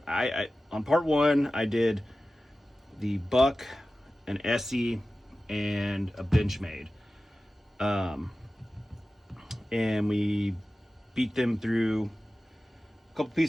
part 1 I did the buck, an SE, and a Benchmade. And we beat them through a couple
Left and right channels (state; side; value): normal; both; correlation 0.95